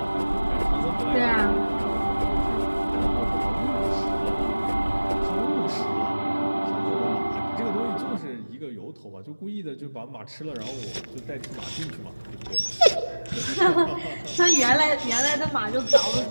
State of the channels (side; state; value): both; inverted; correlation -1.00